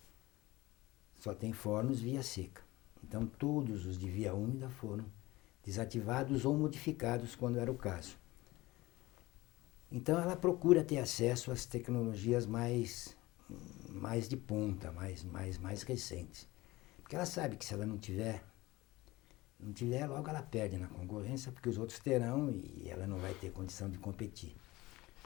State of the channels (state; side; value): quieter; right; 19.8 dB